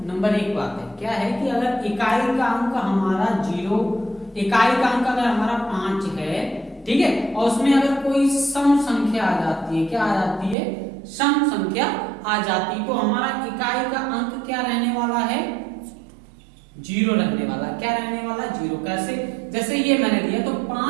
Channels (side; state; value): left; drops out; at 10.6 s